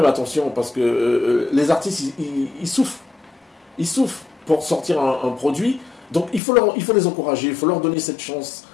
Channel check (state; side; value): drops out; right; at 6.4 s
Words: attention, parce que les artistes, ils souffrent. Ils souffrent pour sortir un produit, donc il faut les encourager, il faut leur donner cette chance.